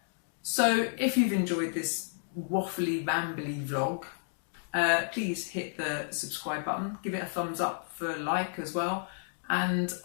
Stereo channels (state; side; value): silent; right; digital silence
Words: So if you've enjoyed this waffly, rambly vlog, please hit the subscribe button, give it a thumbs up for a like as well, and